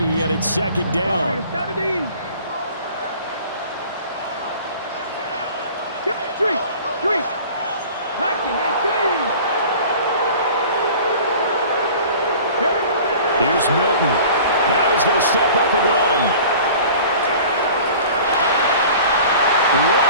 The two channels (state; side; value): inverted; both; correlation -0.44